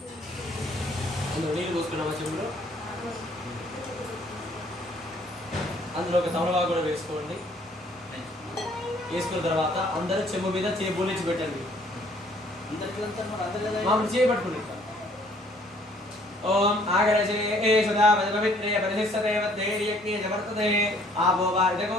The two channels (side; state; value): both; normal; correlation 0.60